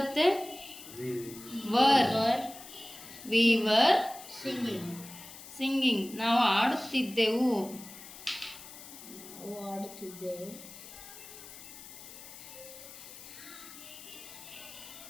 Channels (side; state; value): left; noise; hiss, 15 dB below the sound